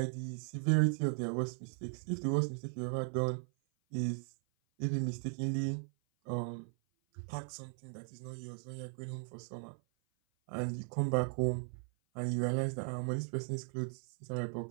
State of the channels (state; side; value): silent; left; 53 dB below the other